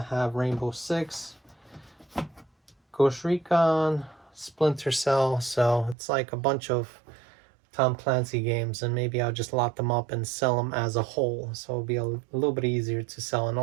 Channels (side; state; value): left; drops out; at 6.0 s